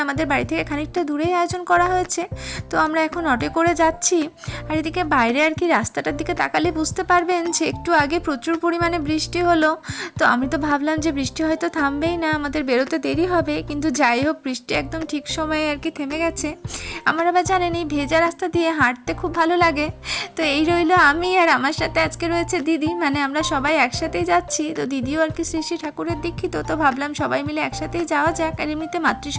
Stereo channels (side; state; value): both; identical; correlation 1.00